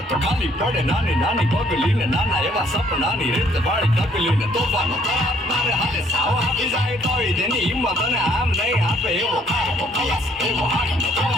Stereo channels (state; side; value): normal; both; correlation 0.64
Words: તો ખાલી પડે નાની નાની પગલીને નાના એવા સપનાની રીત વાળી તકલીને તોફાનો તારે હાથે સાવ આપી જાય તોય તેની હિંમત અને આમ નહીં આપે એવો કારનો ખલાસી એવો હાથનો